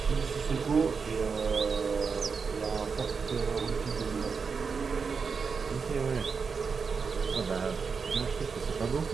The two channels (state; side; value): quieter; left; 5.4 dB